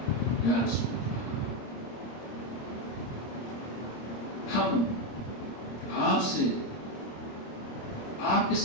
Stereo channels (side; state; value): right; late; 26 ms